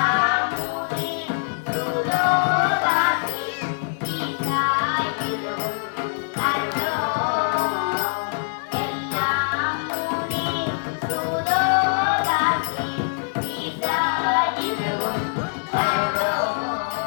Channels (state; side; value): silent; right; digital silence